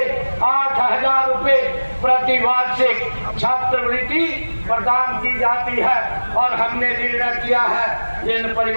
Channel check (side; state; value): both; inverted; correlation -1.00